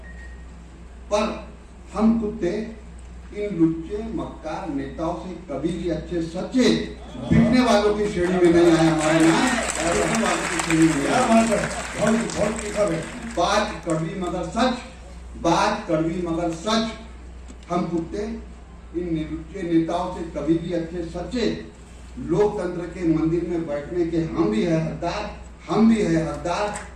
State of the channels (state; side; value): identical; both; correlation 1.00